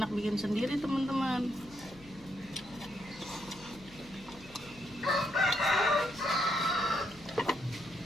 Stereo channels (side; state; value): left; noise; hum, 22 dB below the sound